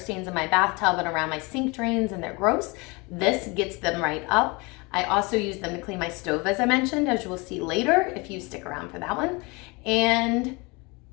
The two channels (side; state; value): right; quieter; 27.0 dB